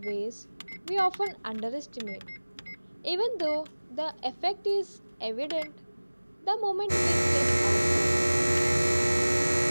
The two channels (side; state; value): both; inverted; correlation -1.00